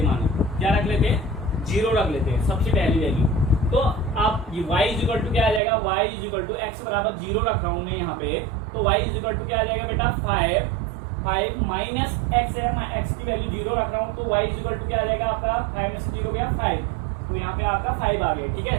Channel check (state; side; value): drops out; left; at 5.6 s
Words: मानो क्या रख लेते हैं, 0 रख लेते हैं सबसे पहली वैल्यू। तो आप ये y इक्वल टू क्या आ जाएगा, y इक्वल टू x बराबर 0 रख रहा हूं मैं यहाँ पे। तो y इक्वल टू क्या आ जाएगा बेटा, 5 माइनस x है, मैं x की वैल्यू 0 रख रहा हूँ। तो y इक्वल टू क्या आ जाएगा आपका, 5 में से 0 गया 5, तो यहाँ पे आपका 5 आ गया। ठीक